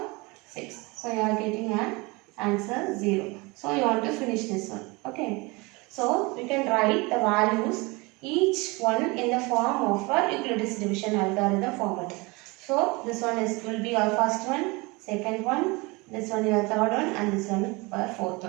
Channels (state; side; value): quieter; left; 25.6 dB